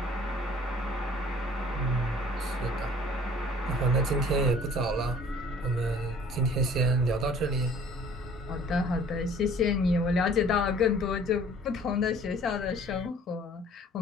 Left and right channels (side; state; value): both; normal; correlation 0.52